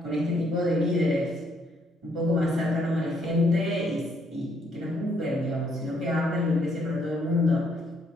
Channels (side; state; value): both; normal; correlation 0.70